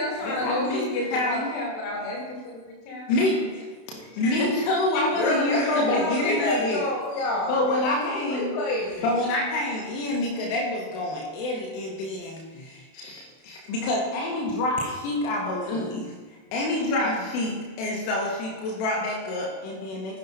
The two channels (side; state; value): right; late; 32 ms